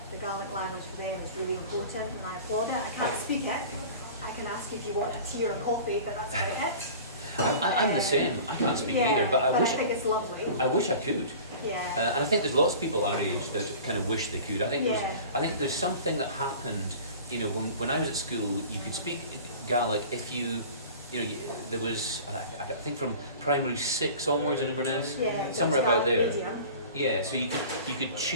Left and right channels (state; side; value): inverted; both; correlation -0.40